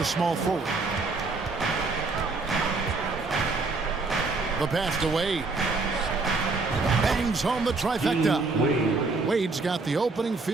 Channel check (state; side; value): quieter; left; 3.8 dB